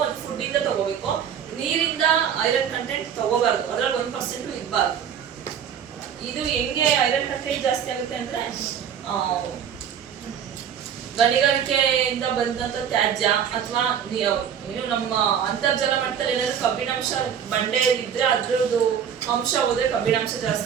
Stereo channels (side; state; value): left; quieter; 8.3 dB